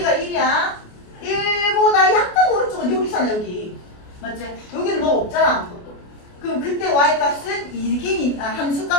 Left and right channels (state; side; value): late; right; 28 ms